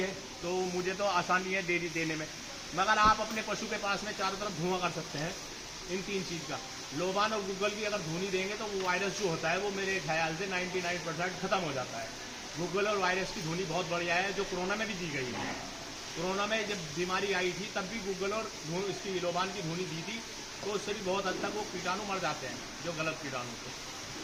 तो मुझे तो आसानी है डेयरी देने में, मगर आप अपने पशु के पास में चारों तरफ धुआं कर सकते हैं इन 3 चीज़ का। लोबान और गुग्गल की अगर धुनी देंगे तो वो वायरस जो होता है वो मेरे ख्याल से 99% ख़त्म हो जाता है। गुग्गल और वायरस की धुनी बहुत बढ़िया है, जो कोरोना में भी दी गई है। कोरोना में जब बीमारी आई थी तब भी गूगल और इसकी लोबान की धुनी दी थी, तो उससे भी बहुत हद तक वो कीटाणु मर जाते हैं, जो गलत कीटाणु थे।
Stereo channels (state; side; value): identical; both; correlation 1.00